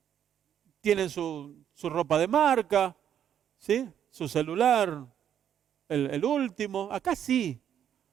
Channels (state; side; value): quieter; left; 9.5 dB